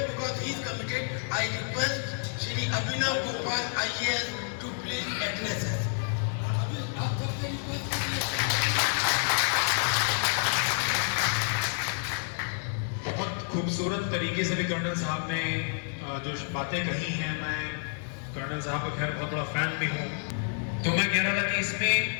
because he is committed, I request Shri Abhinav Gopal IAS to please address us. बहुत खूबसूरत तरीके से भी कर्नल साहब ने जो बातें कही हैं, मैं कर्नल साहब का खैर बहुत बड़ा फैन भी हूँ। तो मैं कह रहा था कि इसमें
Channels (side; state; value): right; silent; 58 dB below the other